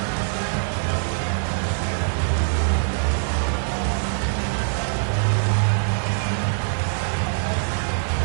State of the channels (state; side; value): silent; left; digital silence